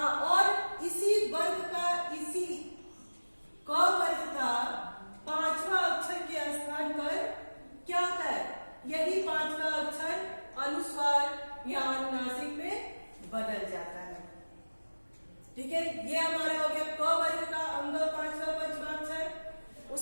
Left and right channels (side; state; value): both; inverted; correlation -1.00